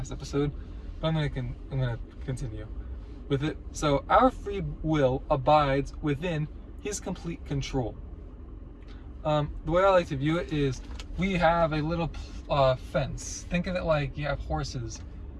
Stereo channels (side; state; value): both; identical; correlation 1.00